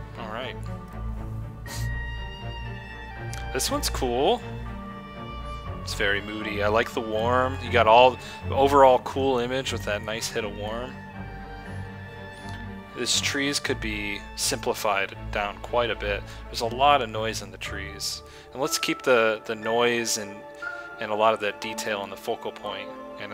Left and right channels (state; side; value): identical; both; correlation 1.00